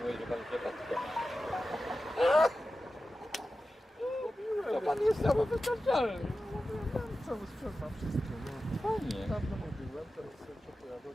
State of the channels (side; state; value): both; normal; correlation 0.93